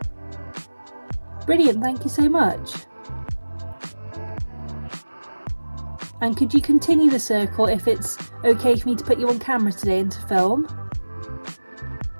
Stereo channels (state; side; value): inverted; both; correlation -1.00